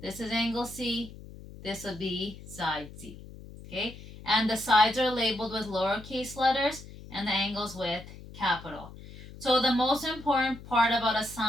This is angle C. This will be side C. Okay? And the sides are labeled with lowercase letters and the angles with capital. So the most important part about a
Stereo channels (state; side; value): noise; left; hum, 16 dB below the sound